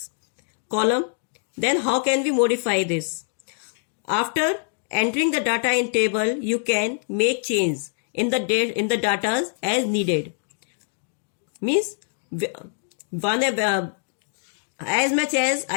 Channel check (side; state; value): right; silent; digital silence